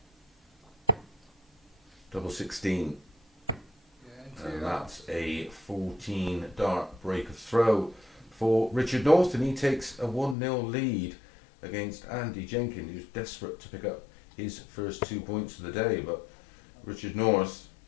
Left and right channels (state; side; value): drops out; right; at 10.4 s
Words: Double 16. And that's a 14 dart break of throw for Richard North, and he takes a 1-0 lead against Andy Jenkins, who's desperate to pick up his first 2 points of the day. But Richard North,